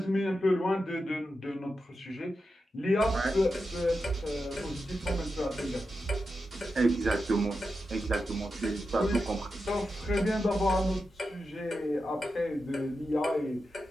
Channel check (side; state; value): both; normal; correlation 0.89